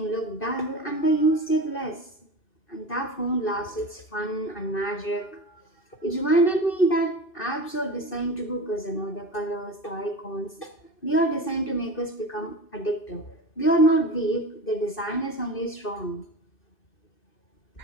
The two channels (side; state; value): right; late; 2.6 ms